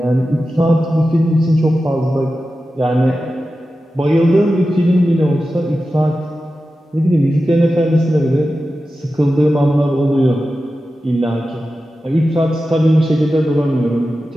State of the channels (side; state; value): both; normal; correlation 0.93